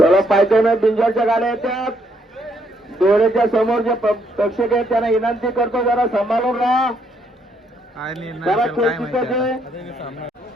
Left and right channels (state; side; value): normal; both; correlation 0.72